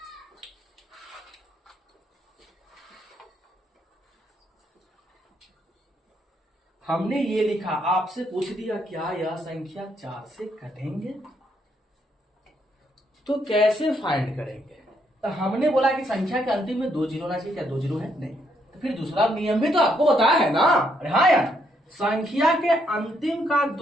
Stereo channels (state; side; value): normal; both; correlation 0.74